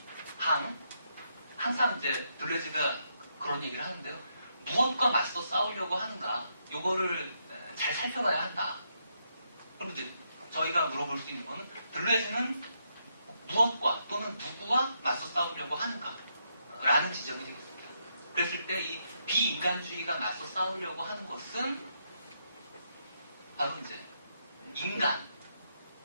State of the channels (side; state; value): both; inverted; correlation -0.79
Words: 항상 이제 들레즈가 그런 얘기를 하는데요. 무엇과 맞서 싸우려고 하는가, 요거를 잘 살펴봐야 한다. 그럼 이제 저희가 물어볼 수 있는 거는 들레즈는 무엇과 또는 누구와 맞서 싸우려고 하는가? 라는 지점이 되겠습니다. 그랬을 때 이 비인간주의가 맞서 싸우려고 하는 것은 바로 이제 인간,